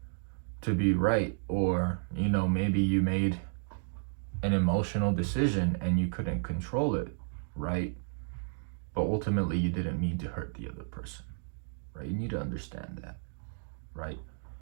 to be right, or, maybe you made an emotional decision and you couldn't control it, right? But ultimately, you didn't mean to hurt the other person, right? You need to understand that, right?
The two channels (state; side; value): silent; left; digital silence